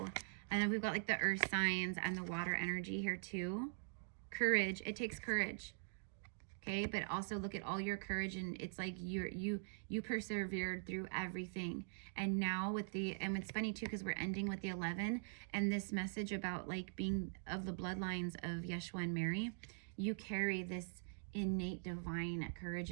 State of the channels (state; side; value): silent; left; digital silence